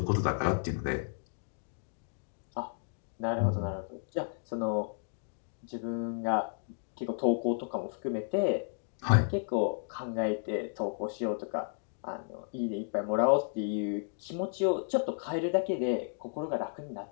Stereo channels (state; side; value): silent; right; digital silence